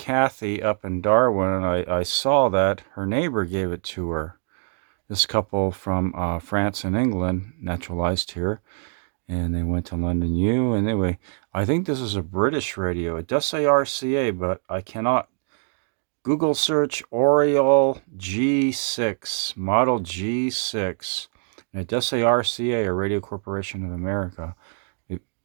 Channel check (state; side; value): silent; left; digital silence